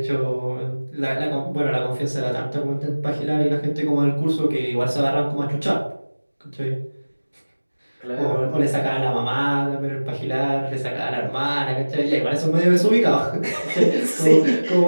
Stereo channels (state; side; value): inverted; both; correlation -1.00